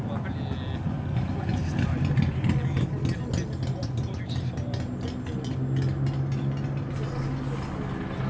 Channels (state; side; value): identical; both; correlation 1.00